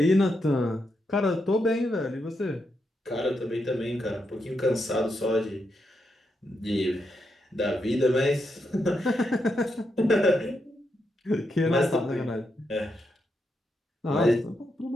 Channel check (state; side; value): normal; both; correlation 0.83